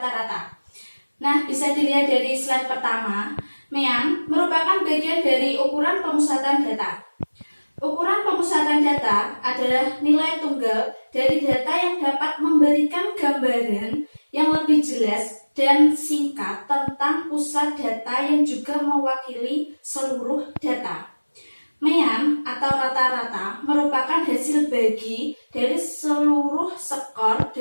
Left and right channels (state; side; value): inverted; both; correlation -1.00